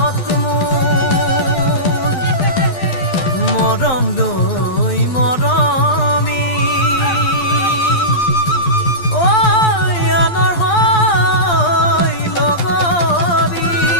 মৰম লৈ মৰমি আনৰ হৈ লগৰী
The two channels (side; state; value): right; late; 12 ms